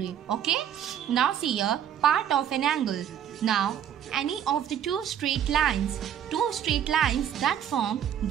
Okay. Now see here part of an angle. Now any of the two straight lines that form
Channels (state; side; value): quieter; left; 9.6 dB